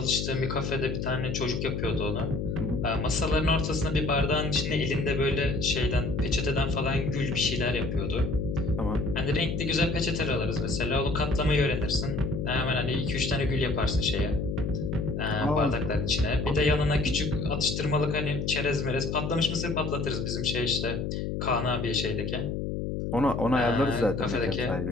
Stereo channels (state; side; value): noise; left; hum, 2 dB below the sound